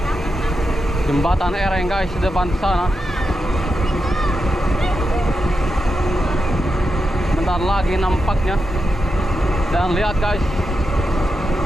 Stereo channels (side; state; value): both; normal; correlation 0.87